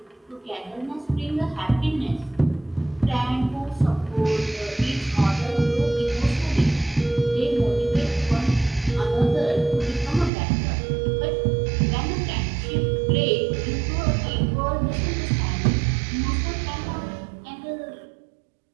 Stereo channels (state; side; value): drops out; left; at 10.3 s